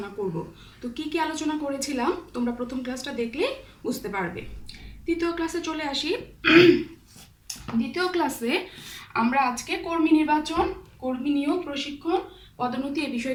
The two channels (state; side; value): identical; both; correlation 1.00